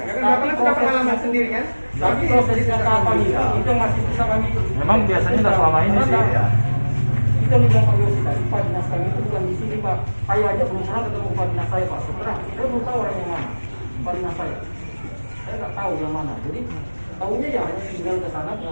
Bapak sudah pengalaman sendiri kan. Tapi prosesnya kapan itu masih bisa kami. Memang biasanya tidak selama ini sih. Ya. Kita bilang Pak Yosi tadi, Pak Dinas kami itu bukan di sini Pak. Saya aja belum pernah ketemu Pak Dinas saya Pak. Sebenarnya saya belum tahu orang yang mana. Pak Dinas saya. Saya nggak tahu yang mana. Jadi tahunya ya hanya tinggal ke sana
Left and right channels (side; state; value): both; inverted; correlation -1.00